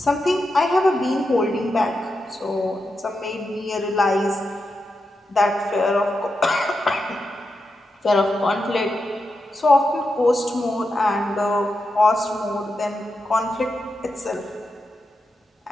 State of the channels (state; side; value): normal; both; correlation 0.87